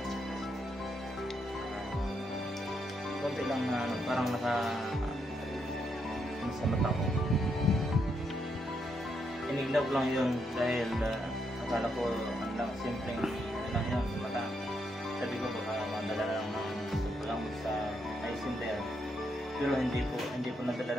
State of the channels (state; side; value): normal; both; correlation 0.79